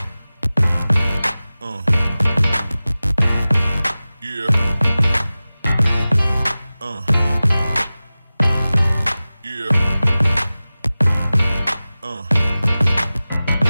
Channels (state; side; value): inverted; both; correlation -0.97